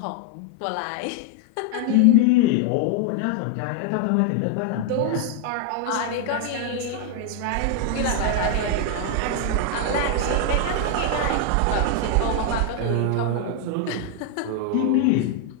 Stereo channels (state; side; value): different; both; correlation 0.00